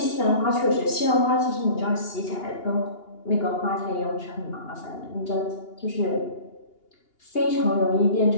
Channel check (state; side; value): late; right; 2.8 ms